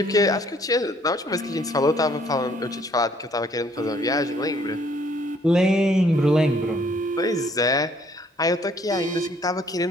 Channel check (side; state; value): both; normal; correlation 0.63